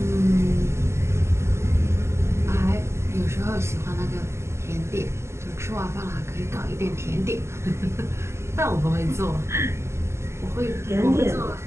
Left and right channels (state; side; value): late; left; 0.13 ms